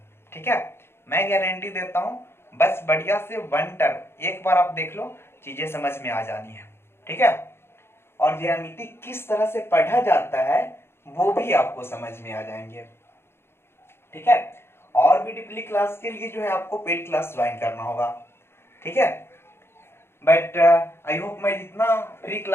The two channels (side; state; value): right; late; 0.12 ms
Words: ठीक है, मैं गारंटी देता हूं, बस बढ़िया से वन टर्म एक बार आप देख लो, चीजें समझ में आ जानी है। ठीक है, और ज्यामिति किस तरह से पढ़ा जाता है वो भी आपको समझ में आ जाएंगे। ठीक है, और भी डीपली क्लास के लिए जो है आपको पेड क्लास ज्वाइन करना होगा। ठीक है, बट आई होप मैं जितना फ्री